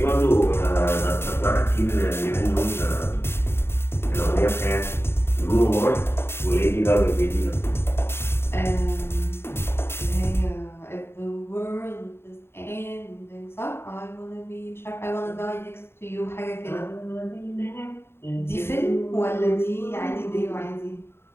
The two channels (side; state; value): right; late; 0.11 ms